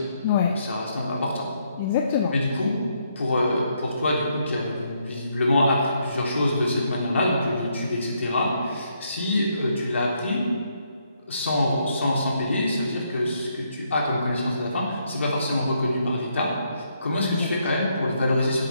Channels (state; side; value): inverted; both; correlation -0.75